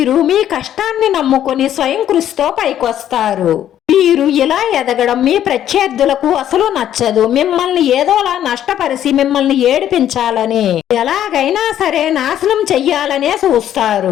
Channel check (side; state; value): right; quieter; 11.0 dB